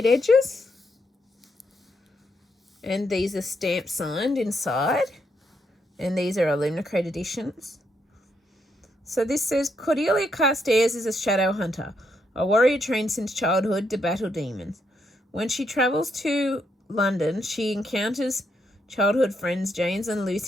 edges. And these are stamp signed inside. And these are Illumicrate editions. So this says, Cordelia Carstairs is a shadow hunter, a warrior trained since childhood to battle demons. When she travels to London, she encounters childhood friends James and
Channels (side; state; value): both; normal; correlation 0.78